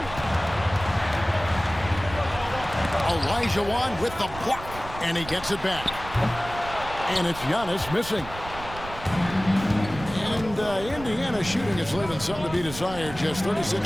Olajuwon with the block, and he gets it back. And it's Giannis missing. And Indiana shooting is leaving something to be desired. Just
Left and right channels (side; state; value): right; noise; rumble, 13 dB below the sound